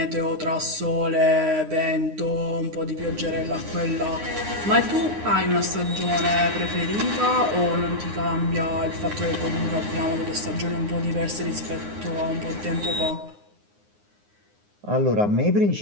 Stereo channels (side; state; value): left; late; 9.7 ms